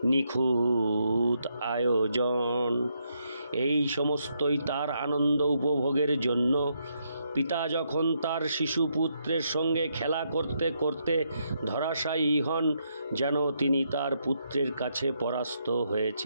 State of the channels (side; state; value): both; inverted; correlation -0.78